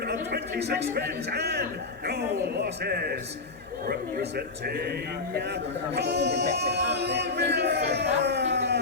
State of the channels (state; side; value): quieter; right; 3.7 dB